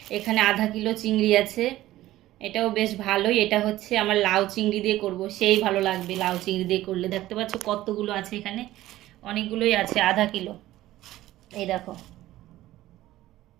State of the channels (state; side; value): quieter; left; 15.3 dB